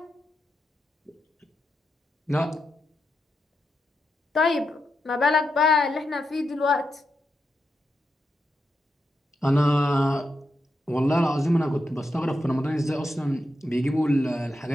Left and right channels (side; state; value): both; normal; correlation 0.85